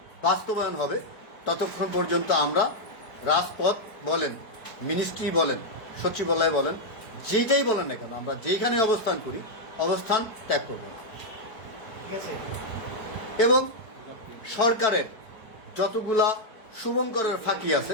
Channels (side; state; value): right; late; 4.5 ms